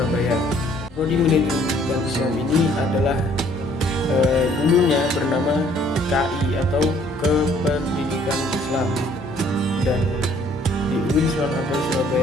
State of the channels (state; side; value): normal; both; correlation 0.61